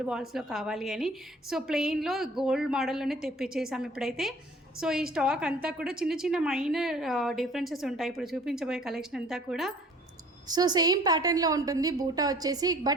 బాల్స్లో కావాలి అని. సో ప్లెయిన్లో గోల్డ్ మోడల్లోనే తెప్పించేసాము ఇప్పుడైతే. సో ఈ స్టాక్ అంతా కూడా చిన్న చిన్న మైనర్ డిఫరెన్సెస్ ఉంటాయి ఇప్పుడు చూపించబోయే కలెక్షన్ అంతా కూడా. సో సేమ్ ప్యాటర్న్లో ఉంటుంది బూటా వచ్చేసి,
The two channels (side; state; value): both; normal; correlation 0.51